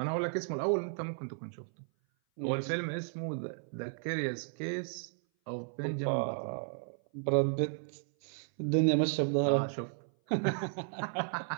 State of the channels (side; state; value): left; silent; 55 dB below the other